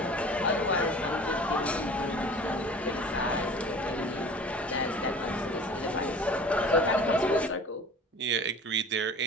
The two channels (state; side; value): normal; both; correlation 0.43